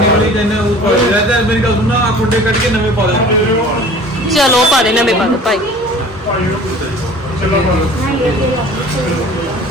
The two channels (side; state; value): both; normal; correlation 0.45